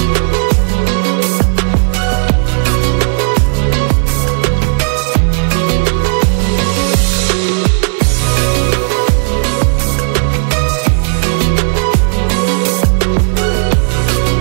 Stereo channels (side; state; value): left; silent; digital silence